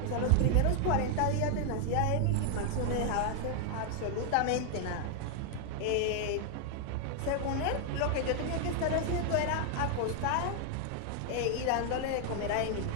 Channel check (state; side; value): different; both; correlation 0.00